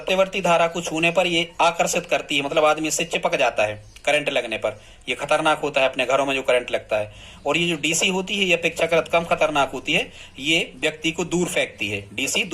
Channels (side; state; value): both; identical; correlation 1.00